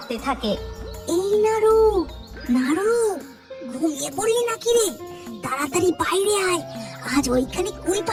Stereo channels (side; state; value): both; identical; correlation 1.00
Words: থাকে। এই নাড়ু, নাড়ু, ঘুমিয়ে পড়লি নাকি রে? তাড়াতাড়ি বাইরে আয়, আজ ওইখানে কুল